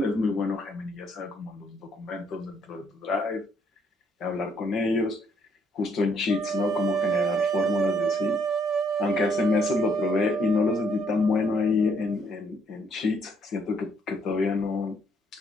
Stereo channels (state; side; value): normal; both; correlation 0.68